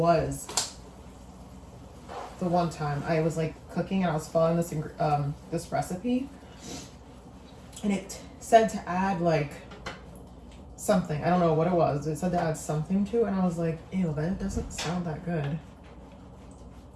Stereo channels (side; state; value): both; identical; correlation 1.00